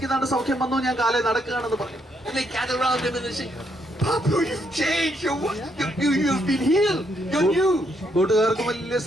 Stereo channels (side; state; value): both; normal; correlation 0.75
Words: നല്ല സൗഖ്യം വന്നു, ഞാൻ കാലേ നടക്കുകയാണെന്ന് പറഞ്ഞു. And they gather around him and they say, Bapu, you've changed. You've been healed. You're new. കൂട്ടുകാർക്ക് വലിയ